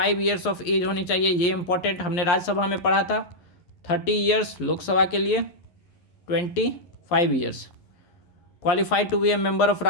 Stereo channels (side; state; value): right; late; 11 ms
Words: ईयर्स ऑफ एज होनी चाहिए, ये इंपॉर्टेंट, हमने राज्यसभा में पढ़ा था। 30 ईयर्स लोकसभा के लिए, 25 years. Qualified to be a member of